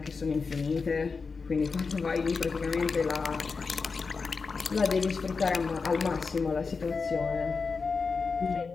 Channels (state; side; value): quieter; right; 4.7 dB